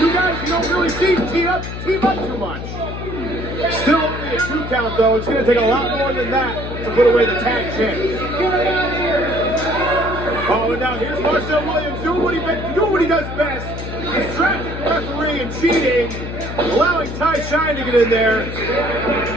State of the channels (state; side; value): noise; left; hum, 7 dB below the sound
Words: guys you don't really see team up too much. Still only a 2 count, though. It's going to take a lot more than that to put away the tag champ. Oh, and now here's Marcel Williams doing what he does best. Distracting the referee and cheating, allowing Ty Shine to get in there.